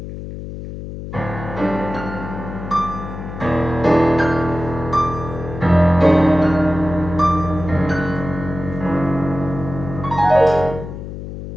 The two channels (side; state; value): left; noise; hum, 9 dB below the sound